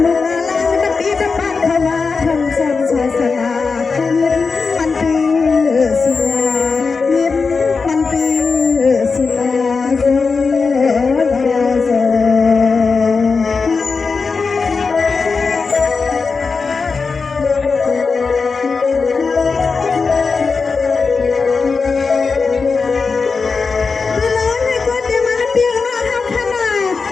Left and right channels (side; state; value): right; quieter; 4.7 dB